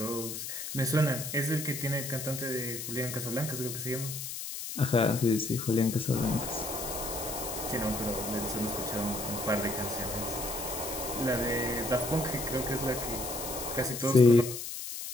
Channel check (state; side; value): noise; left; hiss, 6 dB below the sound